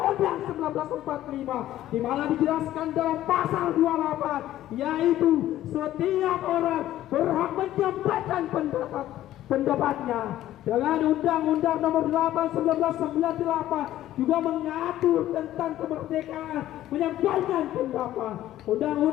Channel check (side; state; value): right; quieter; 13.5 dB